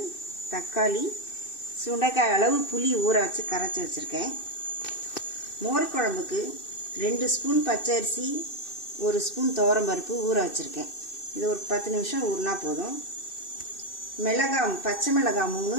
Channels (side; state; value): right; late; 2.6 ms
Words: தக்காளி, சுண்டைக்காய் அளவு புளி ஊற வச்சு கரைச்சி வச்சுருக்கேன். மோர் குழம்புக்கு 2 ஸ்பூன் பச்சரிசி, 1 ஸ்பூன் துவரம்பருப்பு ஊற வச்சுருக்கேன். இது ஒரு 10 நிமிஷம் ஊறினா போதும். மிளகாய், பச்சை மிளகாய் 3,